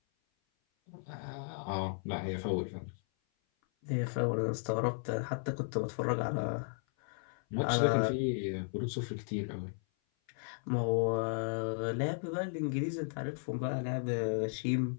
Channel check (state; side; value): silent; right; 54 dB below the other